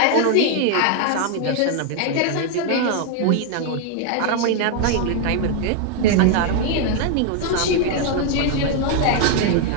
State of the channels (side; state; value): both; different; correlation 0.00